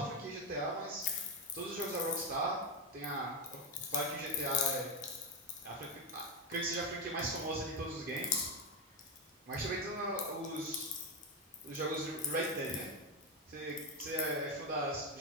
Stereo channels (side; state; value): both; normal; correlation 0.09